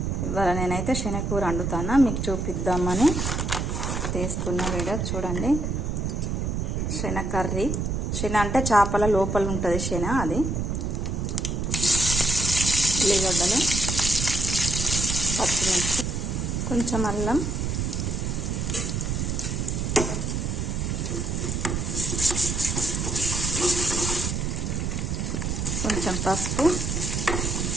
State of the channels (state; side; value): noise; right; rumble, 1 dB below the sound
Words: ఇవాళ నేనైతే శనగకూర వండుతాను, మీకు చూపిద్దామని తీస్తున్న వీడియో. చూడండి, శనగ కర్రీ. శనగ అంటే చేపల లోపల ఉంటుంది శనగ, అది. ఉల్లిగడ్డలు, పచ్చిమిర్చి, కొంచెం అల్లం, కొంచెం పసుపు,